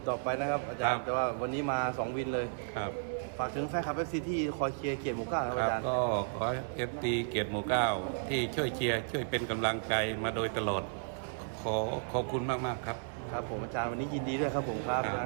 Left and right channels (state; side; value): silent; left; 55 dB below the other